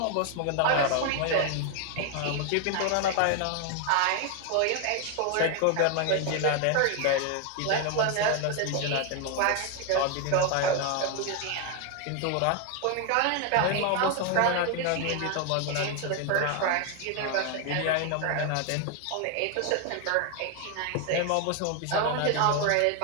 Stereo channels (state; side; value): different; both; correlation 0.01